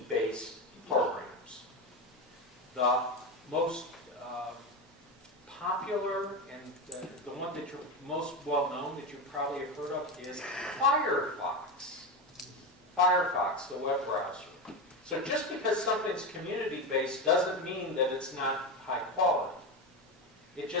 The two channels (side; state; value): both; normal; correlation 0.17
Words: programs. The most popular and the one that you're most well known that you probably have heard of is Firefox. Firefox, the web browser. So just because something's community-based doesn't mean that it's not high quality. It